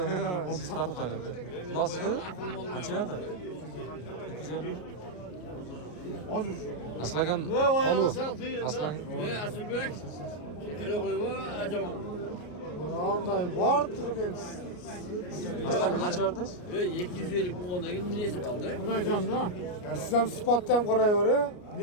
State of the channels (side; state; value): right; late; 33 ms